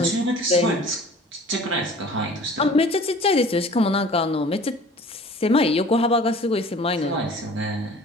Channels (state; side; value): normal; both; correlation 0.47